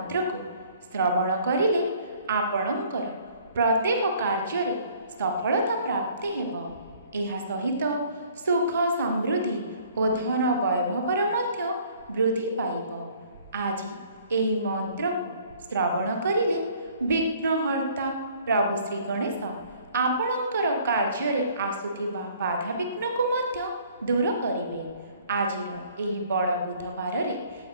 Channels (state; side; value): inverted; both; correlation -0.57